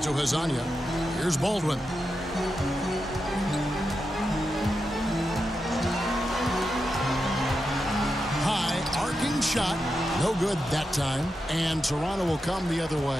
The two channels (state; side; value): normal; both; correlation 0.88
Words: to Hazanya. Here's Baldwin. High arcing shot. No good that time. And Toronto will come the other